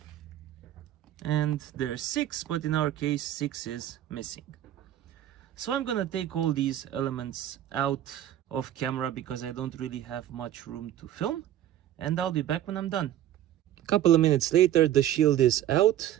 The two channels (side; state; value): left; quieter; 12.1 dB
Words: And there's 6, but in our case 6 is missing. So I'm gonna take all these elements out of camera because I don't really have much room to film, and I'll be back when I'm done. A couple of minutes later, the shield is out,